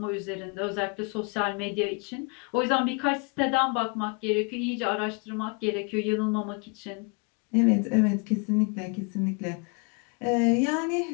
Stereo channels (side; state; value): right; quieter; 33.4 dB